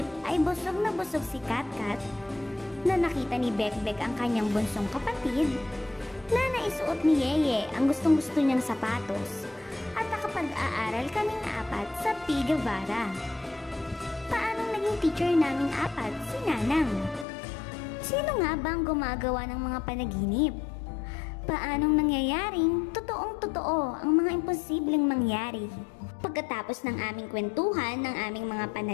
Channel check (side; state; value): right; drops out; at 17.2 s